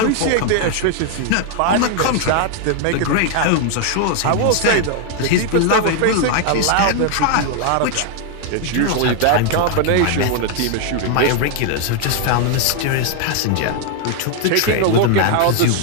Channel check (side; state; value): both; different; correlation 0.00